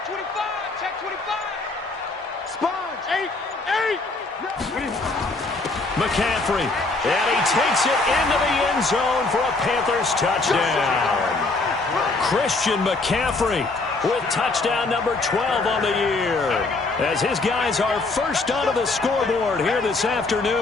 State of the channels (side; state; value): right; quieter; 3.5 dB